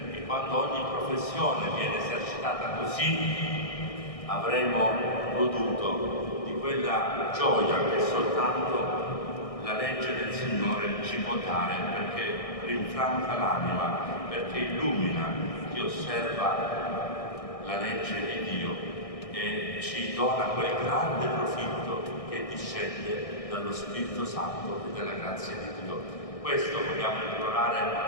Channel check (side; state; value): right; late; 1.6 ms